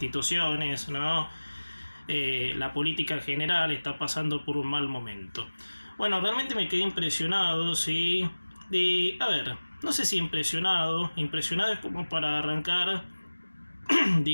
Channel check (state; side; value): inverted; both; correlation -1.00